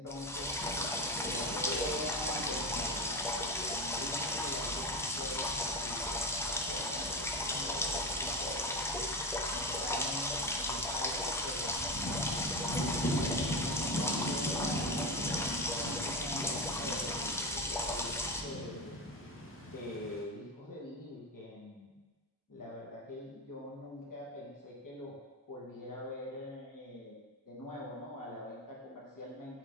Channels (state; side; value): normal; both; correlation 0.19